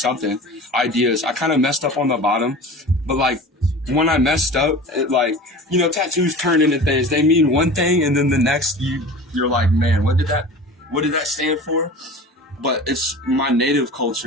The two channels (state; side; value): normal; both; correlation 0.37